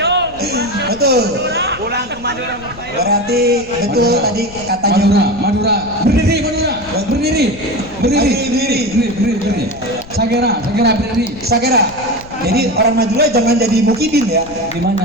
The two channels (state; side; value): noise; left; rumble, 18 dB below the sound